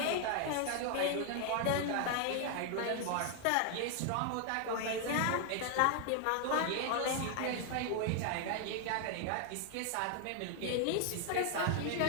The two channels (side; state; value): both; different; correlation 0.00